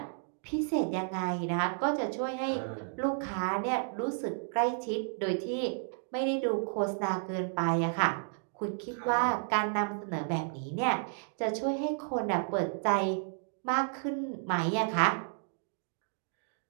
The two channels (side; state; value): left; silent; digital silence